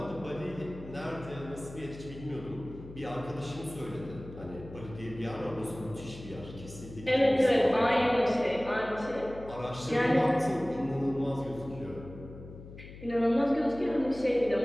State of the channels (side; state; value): left; noise; hum, 15 dB below the sound